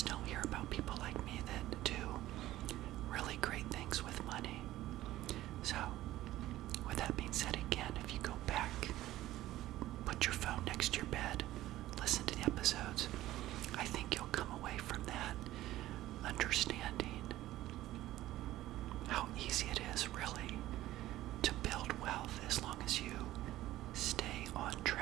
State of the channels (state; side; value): quieter; left; 15.2 dB